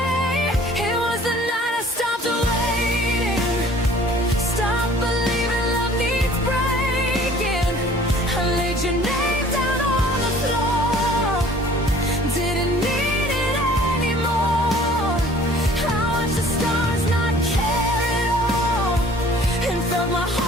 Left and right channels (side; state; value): both; normal; correlation 0.52